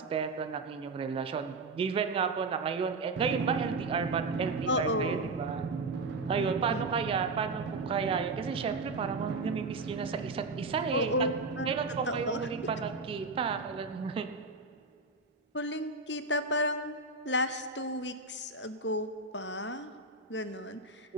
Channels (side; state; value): left; quieter; 3.5 dB